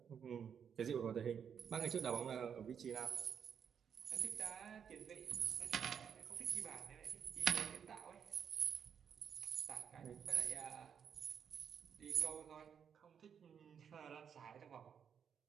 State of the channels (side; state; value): left; quieter; 7.6 dB